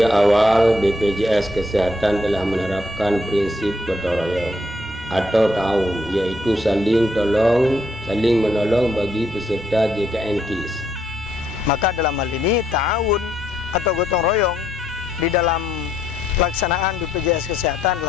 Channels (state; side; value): normal; both; correlation 0.73